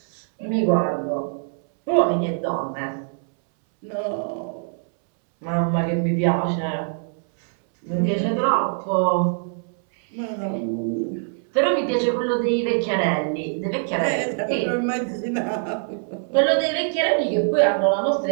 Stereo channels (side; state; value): left; silent; 63 dB below the other